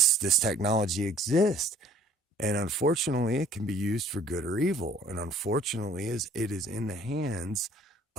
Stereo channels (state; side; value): normal; both; correlation 0.56